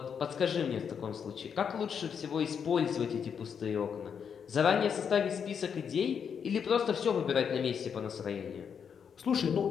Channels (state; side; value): quieter; right; 7.2 dB